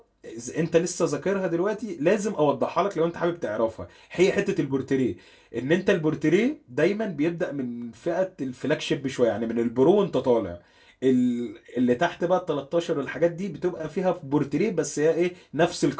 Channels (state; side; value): identical; both; correlation 1.00